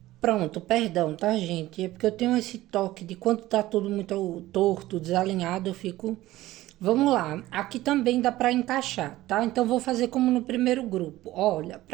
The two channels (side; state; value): left; quieter; 16.3 dB